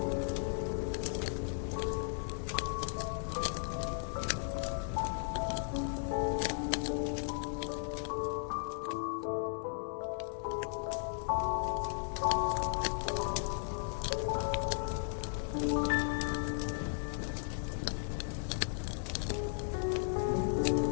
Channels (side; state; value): right; silent; 54 dB below the other